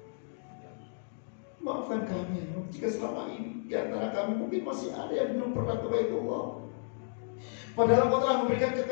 maafkan kami jika selama ini di antara kami mungkin masih ada yang belum pernah ke Baitullah. Padahal Engkau telah memberikan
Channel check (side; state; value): right; silent; digital silence